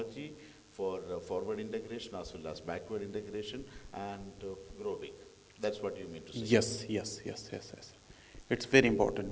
for forward integration as well as backward integration and grow big. That's what you mean to say. Yes. It's very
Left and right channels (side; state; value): both; identical; correlation 1.00